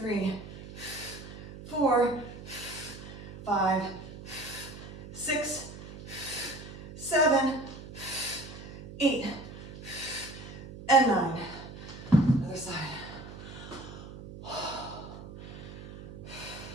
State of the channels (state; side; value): noise; right; hum, 13 dB below the sound